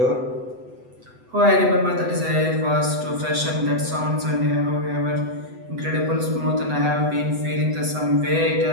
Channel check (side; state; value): left; late; 8.0 ms